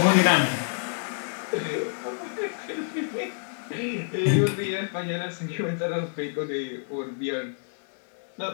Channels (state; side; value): silent; right; digital silence